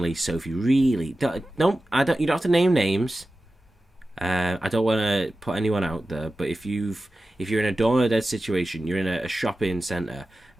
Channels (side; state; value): both; normal; correlation 0.94